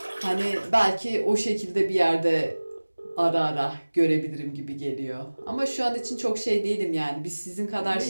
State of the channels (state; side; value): inverted; both; correlation -1.00